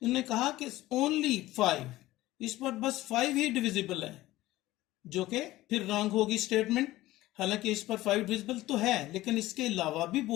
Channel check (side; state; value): right; quieter; 16.9 dB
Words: इन्होंने कहा कि ओनली 5, इस पर बस 5 ही डिविजिबल है, जो कि फिर रॉन्ग होगी स्टेटमेंट। हालांकि इस पर 5 डिविजिबल तो है, लेकिन इसके अलावा भी